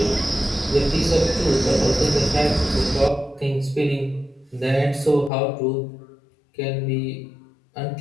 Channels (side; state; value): right; drops out; at 5.3 s